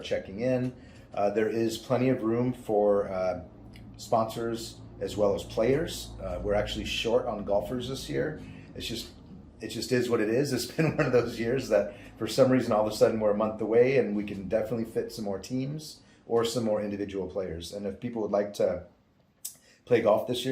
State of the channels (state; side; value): identical; both; correlation 1.00